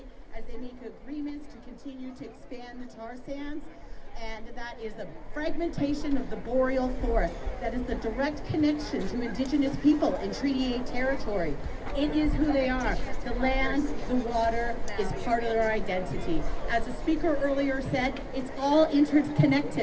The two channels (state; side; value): identical; both; correlation 1.00